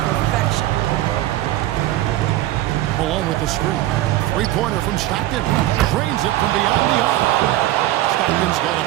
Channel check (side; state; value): left; quieter; 15.3 dB